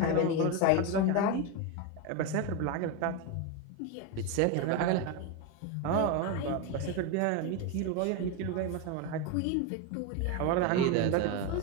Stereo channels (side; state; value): both; different; correlation 0.03